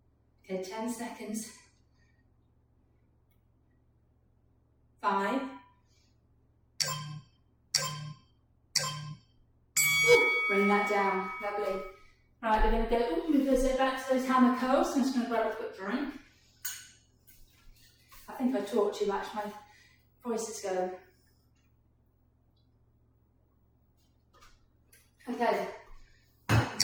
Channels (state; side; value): identical; both; correlation 1.00